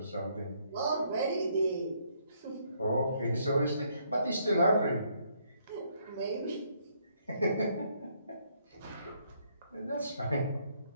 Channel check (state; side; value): inverted; both; correlation -0.70